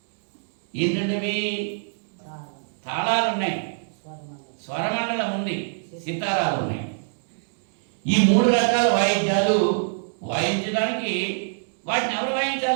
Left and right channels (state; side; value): silent; left; digital silence